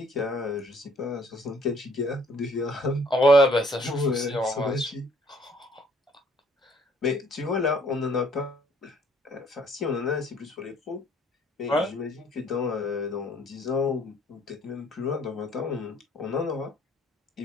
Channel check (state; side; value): normal; both; correlation 0.60